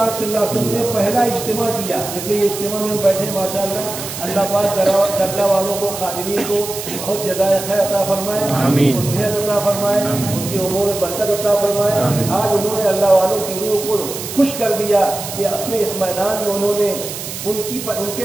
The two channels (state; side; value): noise; right; hiss, 8 dB below the sound